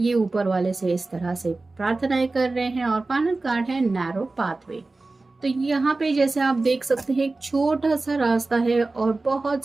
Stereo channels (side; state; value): left; quieter; 3.4 dB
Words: ऊपर वाले से इस तरह से प्रार्थनाएं कर रहे हैं। और फाइनल कार्ड है नैरो पाथवे। तो यहाँ पे जैसे आप देख सकते हैं एक छोटा सा रास्ता है और बहुत